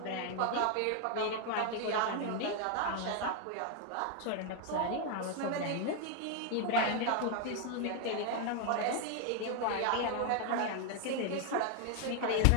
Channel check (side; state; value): both; different; correlation 0.01